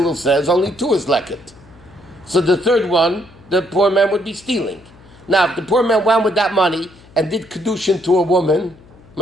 says only 2 is leket. So the 3rd one, the poor man would be stealing. Now, if the poor man went with that money and did kedushin to a woman,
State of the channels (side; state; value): left; noise; hum, 25 dB below the sound